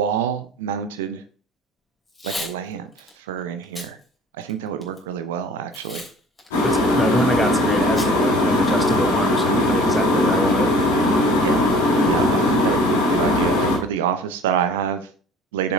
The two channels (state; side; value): normal; both; correlation 0.47